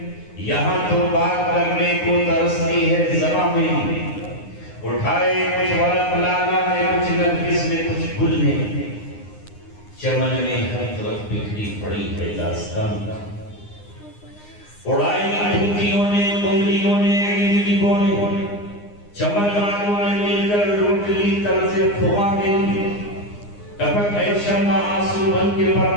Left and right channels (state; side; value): late; right; 9.7 ms